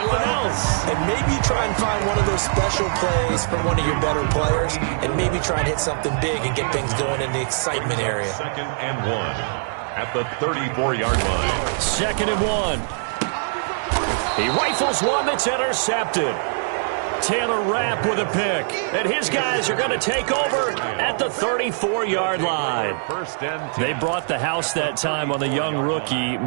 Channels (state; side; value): silent; left; digital silence